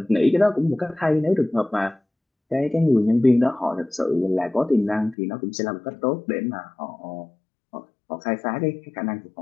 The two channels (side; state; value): right; drops out; at 5.2 s